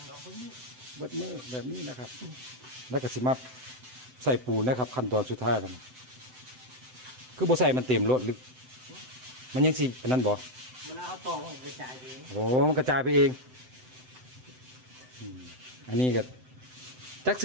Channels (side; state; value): left; late; 7.9 ms